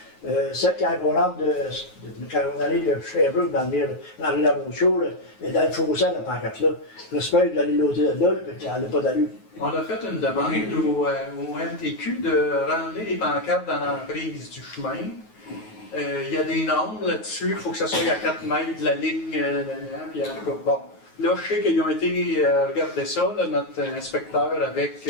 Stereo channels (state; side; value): late; right; 9.3 ms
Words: Ça, quand on rentre quand on allait de Sherbrooke dans la rue Lamonceau, et dans le fossé, la pancarte là, j'espère d'aller l'autre de là, puis elle n'a pas d'allure. On a fait une demande au MTQ de ramener les pancartes dans l'emprise du chemin. Il y a des normes là-dessus, il faut que ça soit à 4 mètres de la ligne, puis bon. Là, je sais qu'ils ont été regarder ça, là, notre inspecteur avec